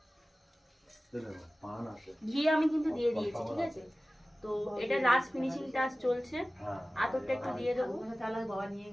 ঘি আমি কিন্তু দিয়ে দিয়েছি, ঠিক আছে? তো এটা লাস্ট ফিনিশিং টাচ চলছে। আতরটা একটু দিয়ে দেবো। বাবা নিয়ে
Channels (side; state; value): both; normal; correlation 0.97